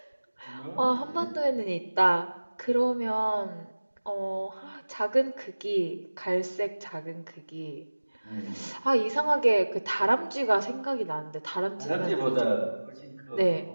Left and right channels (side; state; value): both; inverted; correlation -1.00